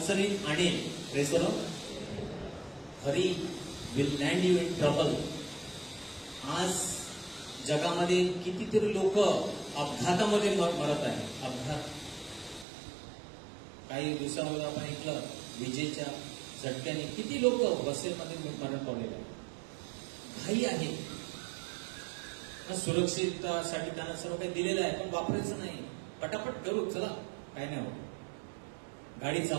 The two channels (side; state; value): left; drops out; at 12.7 s